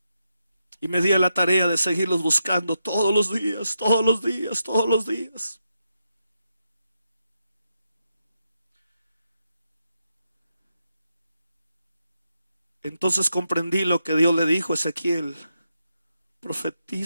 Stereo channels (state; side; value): inverted; both; correlation -0.85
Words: Y me di a la tarea de seguirlos buscando todos los días, todos los días, todos los días. Entonces comprendí lo que Dios le dijo a Ezequiel: